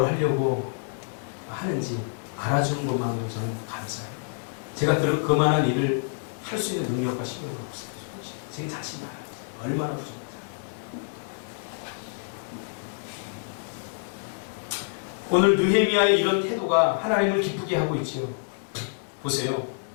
하려고 하는지 알아주는 것만으로 저는 감사해요. 제가 그만한 일을 할 수 있는 능력과 실력이 없어요. 제 자신이 알아요. 얼마나 부족한지. 오늘 느헤미야의 이런 태도가 하나님을 기쁘게 하고 있지요. 보세요.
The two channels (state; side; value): silent; right; digital silence